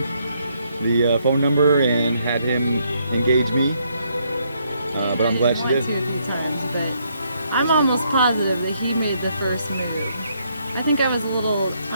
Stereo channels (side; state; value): both; inverted; correlation -0.73